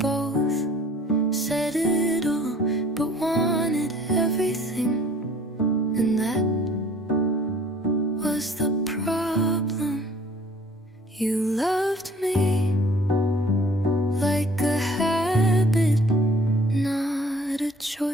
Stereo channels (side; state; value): both; normal; correlation 0.54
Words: said it all, but wanted everything, and that was the problem. You loved me like a habit, not a